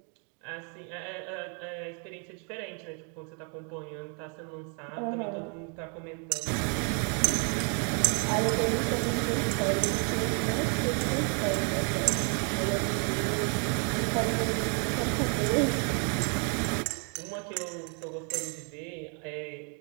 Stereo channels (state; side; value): quieter; left; 39.0 dB